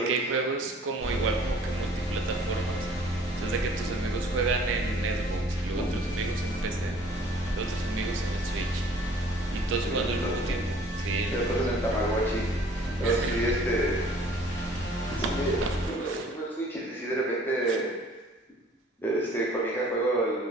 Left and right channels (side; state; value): both; normal; correlation 0.54